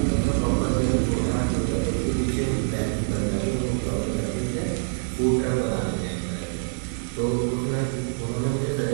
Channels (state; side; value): silent; left; digital silence